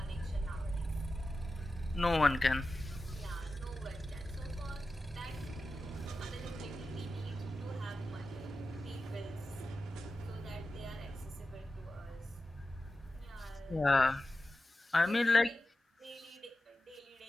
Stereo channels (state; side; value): normal; both; correlation 0.93